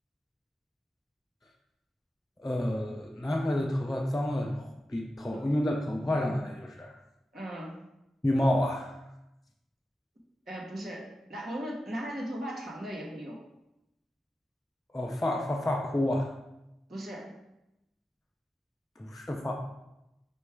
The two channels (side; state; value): both; normal; correlation 0.91